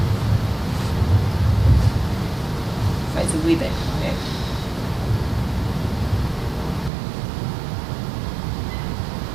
So it's a wee bit.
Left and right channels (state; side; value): drops out; left; at 6.9 s